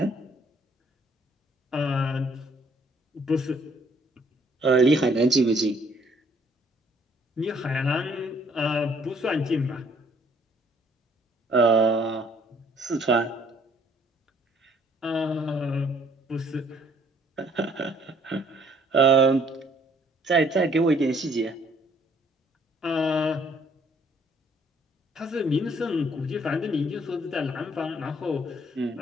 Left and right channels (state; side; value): normal; both; correlation 0.62